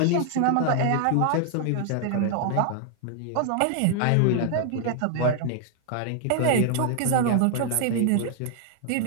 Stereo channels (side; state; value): both; different; correlation 0.00